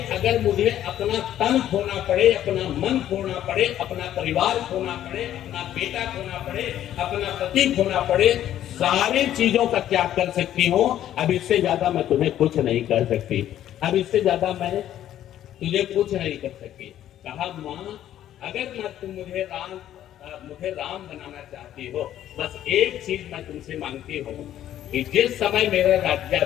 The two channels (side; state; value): right; quieter; 11.8 dB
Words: अगर मुझे अपना तन खोना पड़े, अपना मन खोना पड़े, अपना परिवार खोना पड़े, अपना बेटा खोना पड़े, अपना पति खोना पड़े, सारी चीजों का त्याग कर सकती हूँ। अब इससे ज्यादा मैं तुम्हें कुछ नहीं कर सकती, अब इससे ज्यादा मैं तुझे कुछ नहीं कर सकती। कहा माँ, अगर तुम मुझे राम बनाना चाहती हो, बस एक चीज मैं तुमसे मांगती हूँ कि जिस समय मेरा